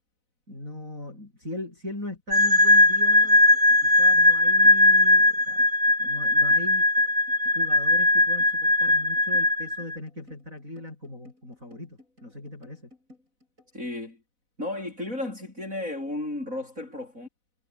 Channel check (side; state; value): left; late; 4.0 ms